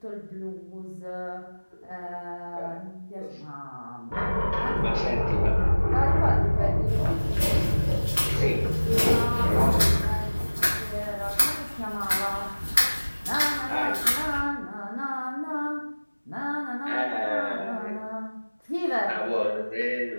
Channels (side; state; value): both; inverted; correlation -1.00